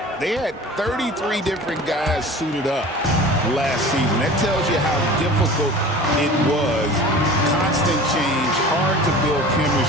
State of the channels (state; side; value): normal; both; correlation 0.40